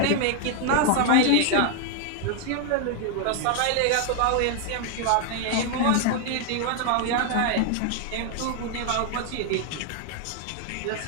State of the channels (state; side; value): different; both; correlation 0.00